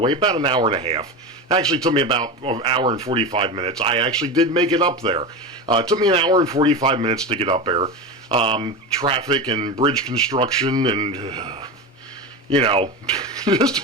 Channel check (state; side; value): normal; both; correlation 0.22